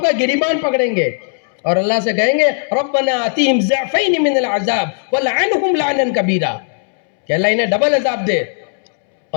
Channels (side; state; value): right; silent; 69 dB below the other